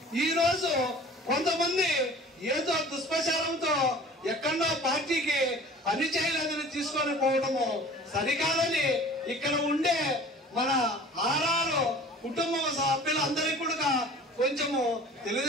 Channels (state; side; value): normal; both; correlation 0.45